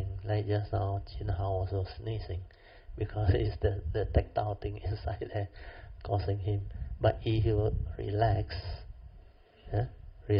like just now, Chin Hao was sneezing, because it's the tactile thing inside there causing him. But if you relax,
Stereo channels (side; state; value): both; identical; correlation 1.00